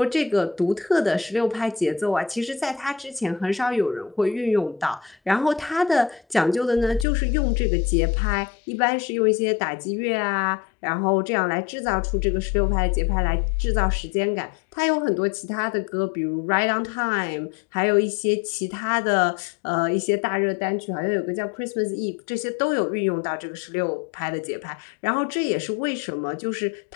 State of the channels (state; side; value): drops out; right; at 7.1 s